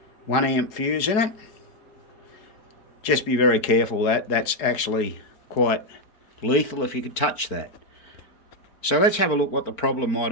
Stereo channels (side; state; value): right; late; 4.4 ms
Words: 1 amp fuse in it. Just be very careful. That's actually quite lethal if you could touch that. So let's have a look what the problem might